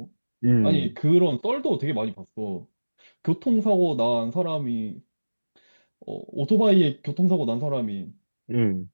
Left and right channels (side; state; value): both; inverted; correlation -1.00